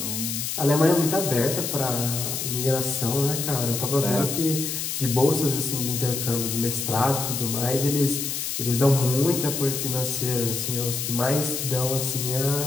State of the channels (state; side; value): noise; left; hiss, 3 dB below the sound